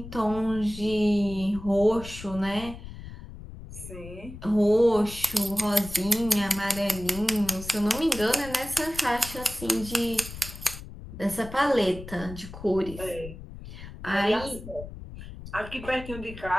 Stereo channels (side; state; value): left; noise; rumble, 13 dB below the sound